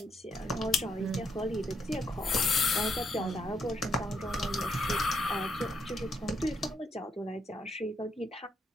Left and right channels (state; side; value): normal; both; correlation 0.77